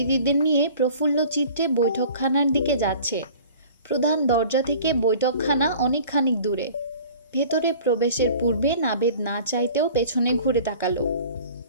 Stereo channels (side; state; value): both; inverted; correlation -0.46